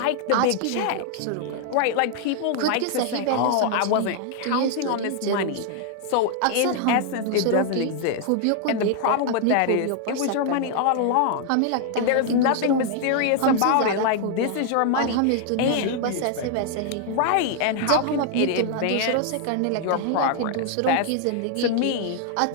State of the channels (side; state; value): both; different; correlation 0.00